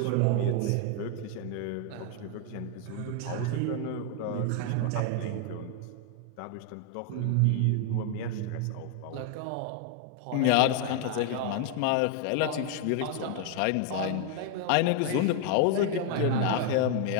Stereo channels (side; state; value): both; different; correlation 0.00